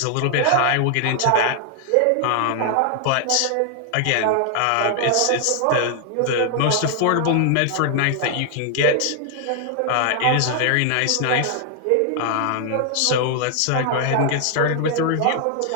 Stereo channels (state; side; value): different; both; correlation 0.00